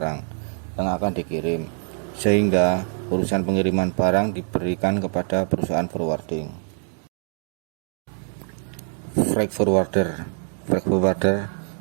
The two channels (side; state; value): left; silent; 58 dB below the other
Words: yang akan dikirim, sehingga urusan pengiriman barang diberikan kepada perusahaan forwarding. Freight forwarder